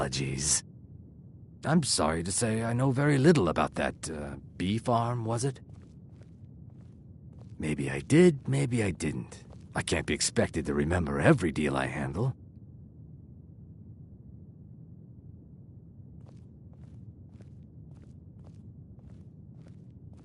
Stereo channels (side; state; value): both; identical; correlation 1.00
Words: I'm sorry to say I know very little about that, bee farm, was it? Maybe I did, maybe I didn't. I can't be expected to remember every deal I handle.